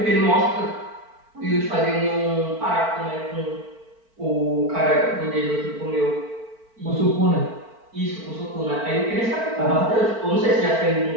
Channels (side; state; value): left; late; 4.5 ms